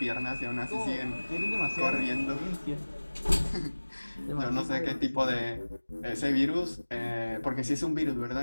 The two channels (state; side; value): inverted; both; correlation -1.00